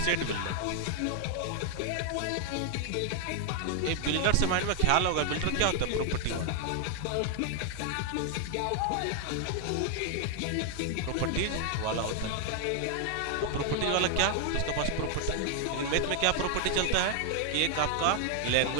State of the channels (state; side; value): different; both; correlation 0.00